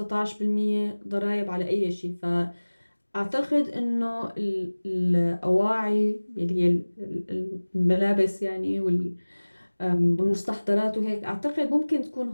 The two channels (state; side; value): inverted; both; correlation -1.00